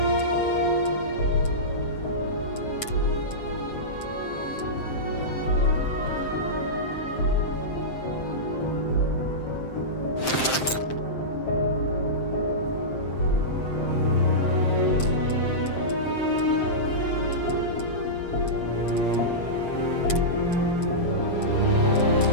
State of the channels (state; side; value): late; right; 7.6 ms